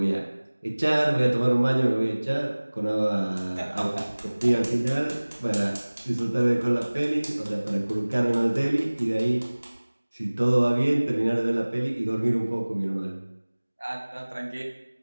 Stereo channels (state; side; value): inverted; both; correlation -1.00